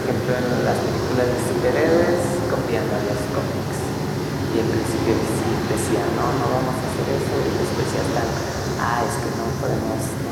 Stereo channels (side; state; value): both; identical; correlation 1.00